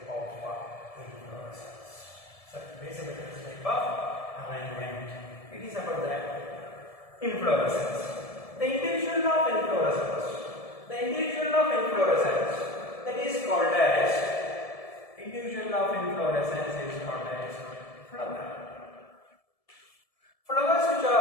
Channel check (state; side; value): late; right; 1.7 ms